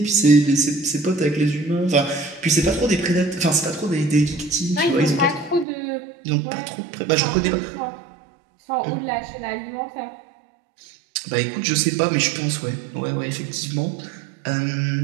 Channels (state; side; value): drops out; left; at 5.7 s